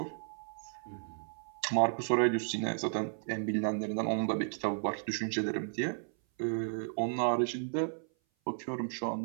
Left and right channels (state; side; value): silent; left; 55 dB below the other